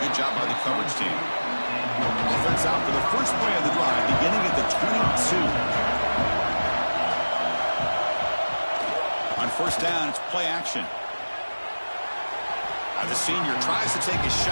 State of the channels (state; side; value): inverted; both; correlation -1.00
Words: Good job by the coverage team. Offense out for the first play of the drive, beginning at the 22. On first down, it's play action. The senior tries to take a